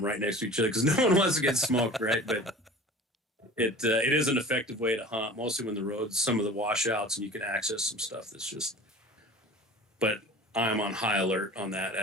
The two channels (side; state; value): both; normal; correlation 0.40